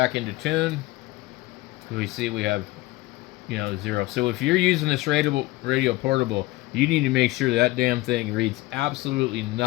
into tune. We see we have, 0. So if you're using this radio portable, you need to make sure that damn thing reads absolutely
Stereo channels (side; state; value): right; quieter; 19.2 dB